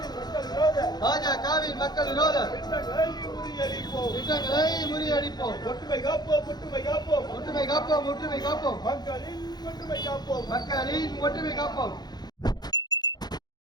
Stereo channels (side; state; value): right; late; 0.20 ms